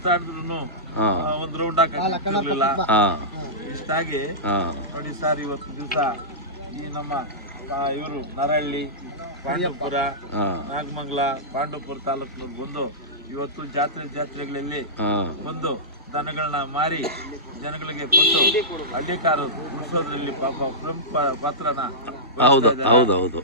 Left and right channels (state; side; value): normal; both; correlation -0.16